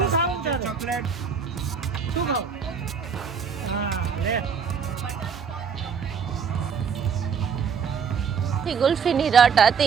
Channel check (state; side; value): quieter; left; 6.3 dB